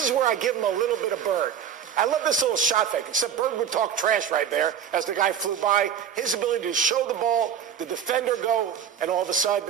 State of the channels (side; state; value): left; quieter; 8.5 dB